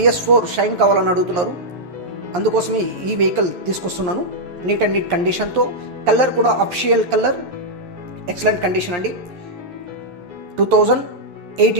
షైన్ కావాలని అడుగుతున్నారు, అందుకోసమే ఈ వెహికల్ తీసుకొస్తున్నాను. నీట్ అండ్ నీట్ కండిషన్తో, కలర్ కూడా అఫిషియల్ కలర్, ఎక్సలెంట్ కండిషన్ అండి.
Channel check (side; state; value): left; late; 11 ms